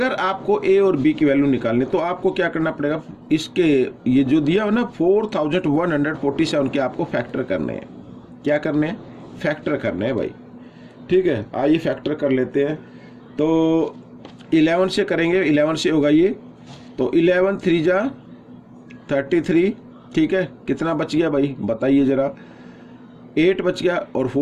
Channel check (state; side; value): identical; both; correlation 1.00